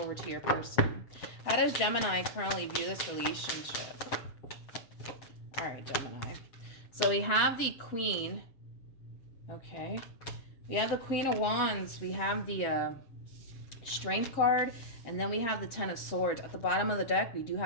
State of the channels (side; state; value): right; late; 7.5 ms